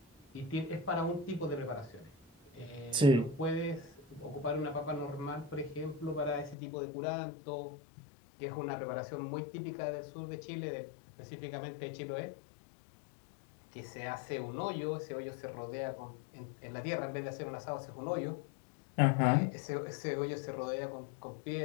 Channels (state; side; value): drops out; right; at 6.6 s